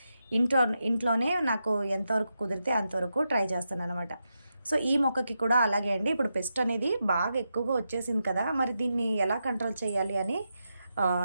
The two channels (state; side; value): inverted; both; correlation -0.86